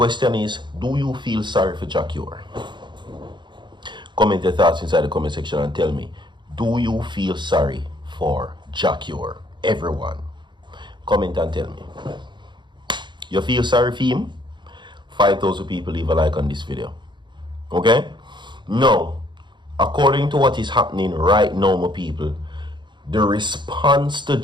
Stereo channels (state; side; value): late; left; 0.22 ms